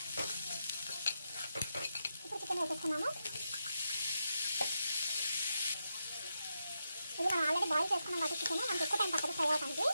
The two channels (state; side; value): inverted; both; correlation -0.85